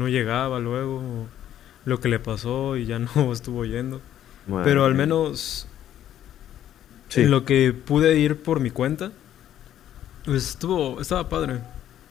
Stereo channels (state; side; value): quieter; right; 11.3 dB